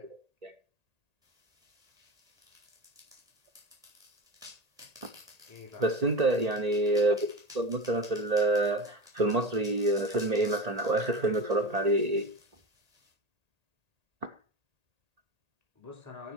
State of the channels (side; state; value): left; late; 1.8 ms